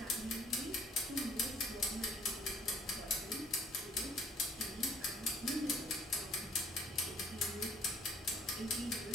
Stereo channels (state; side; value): normal; both; correlation 0.57